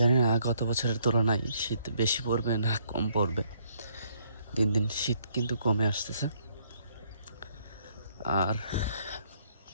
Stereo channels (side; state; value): both; inverted; correlation -0.68